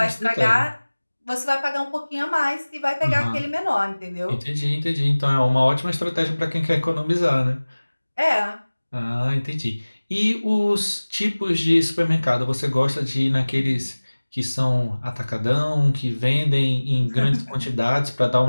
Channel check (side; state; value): both; inverted; correlation -1.00